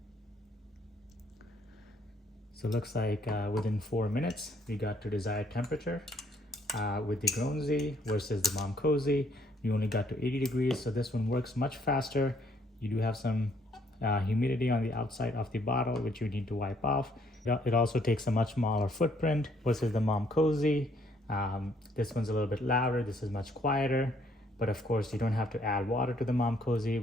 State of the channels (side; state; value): both; normal; correlation 0.66